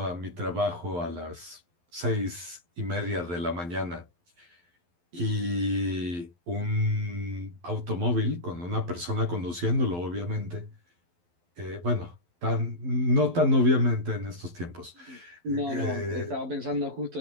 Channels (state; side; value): late; left; 12 ms